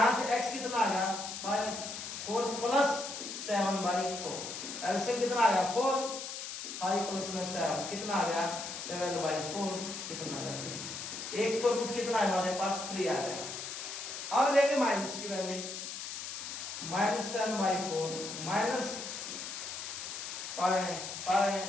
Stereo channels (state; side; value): noise; left; hiss, 7 dB below the sound